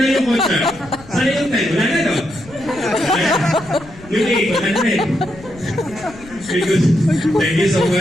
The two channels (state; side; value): noise; left; rumble, 20 dB below the sound